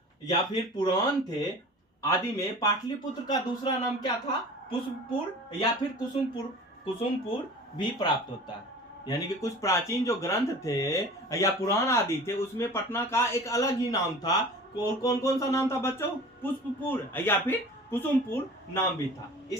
या फिर पुराण थे, आदि में पाटलिपुत्र का दूसरा नाम क्या था, पुष्पपुर या फिर कुसुमपुर। कुसुमपुर भी प्राप्त होता है। यानी कि कुछ प्राचीन जो ग्रंथ थे या पुराण आदि थे, उसमें पटना का एक अलग ही नाम था। और कौन कौन सा नाम था बच्चों? पुष्पपुर या फिर कुसुमपुर नाम भी था।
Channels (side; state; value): both; normal; correlation 0.40